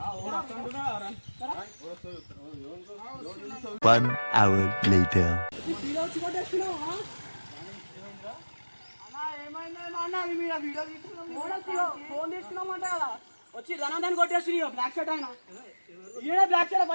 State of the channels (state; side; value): inverted; both; correlation -1.00